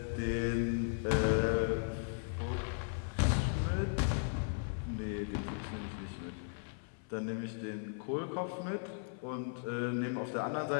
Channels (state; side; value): silent; right; 53 dB below the other